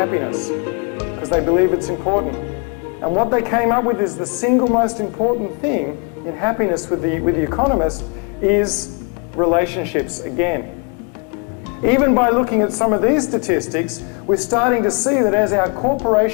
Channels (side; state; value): right; quieter; 35.8 dB